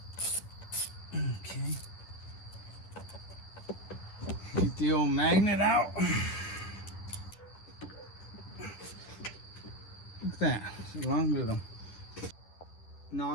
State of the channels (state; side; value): late; right; 10 ms